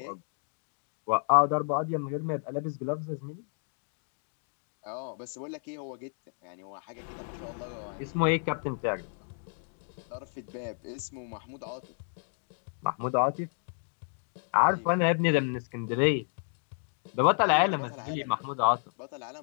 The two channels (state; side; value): silent; right; 57 dB below the other